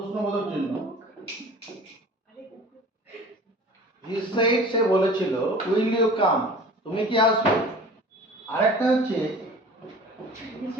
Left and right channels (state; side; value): normal; both; correlation 0.42